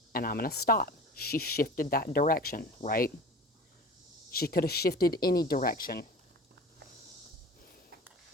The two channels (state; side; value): normal; both; correlation 0.38